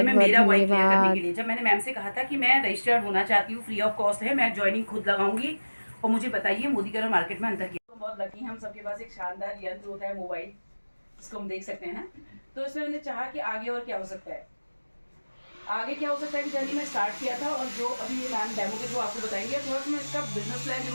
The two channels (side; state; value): both; inverted; correlation -1.00